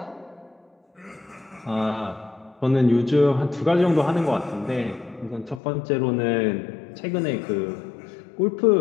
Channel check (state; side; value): drops out; right; at 5.6 s